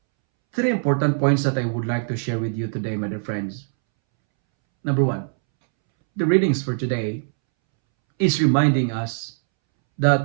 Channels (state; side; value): silent; left; 64 dB below the other